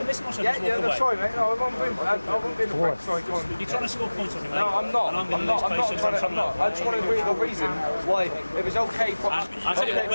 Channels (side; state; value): both; inverted; correlation -1.00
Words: listen or something? Yeah, sorry mate, no, I won't be in the back, sorry, go on. You're trying to score points on me, mate? No, I'm not, I just want to read the reason why it was okay for us. I tell you what,